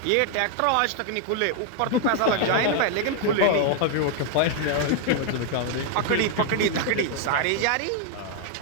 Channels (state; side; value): different; both; correlation 0.00